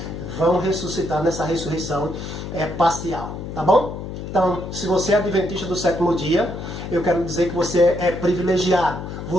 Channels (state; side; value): noise; left; hum, 8 dB below the sound